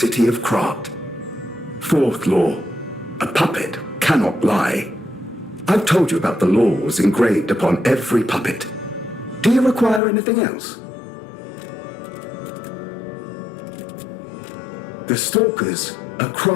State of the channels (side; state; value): right; drops out; at 10.0 s